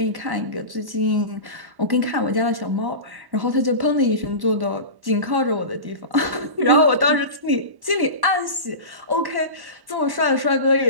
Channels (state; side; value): late; left; 1.1 ms